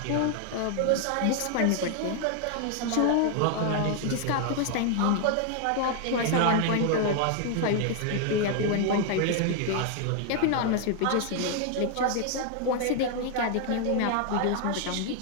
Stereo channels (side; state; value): both; different; correlation 0.00